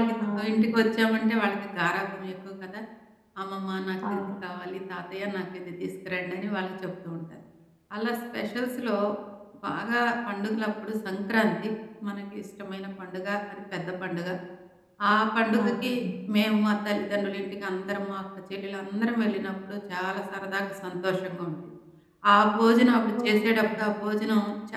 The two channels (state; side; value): identical; both; correlation 1.00